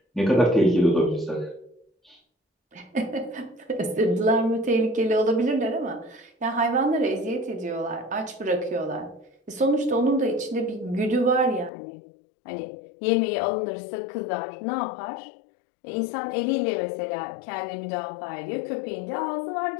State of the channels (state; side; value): drops out; right; at 11.7 s